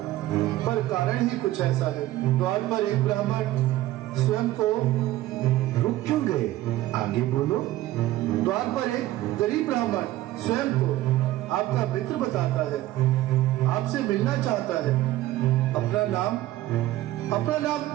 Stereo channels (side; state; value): left; quieter; 15.6 dB